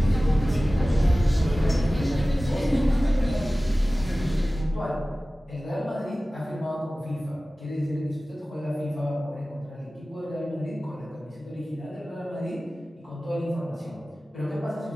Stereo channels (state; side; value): normal; both; correlation 0.97